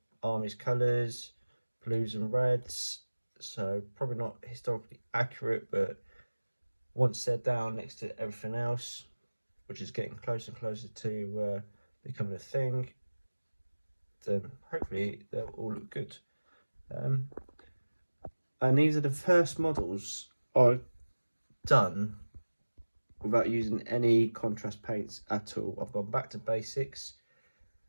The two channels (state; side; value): inverted; both; correlation -1.00